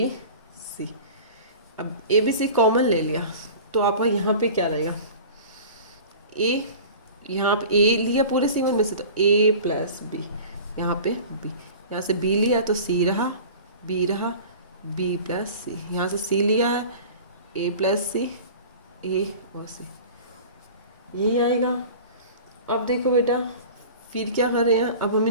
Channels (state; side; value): inverted; both; correlation -0.39